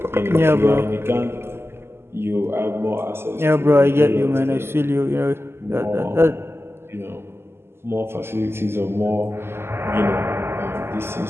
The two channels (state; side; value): late; left; 0.12 ms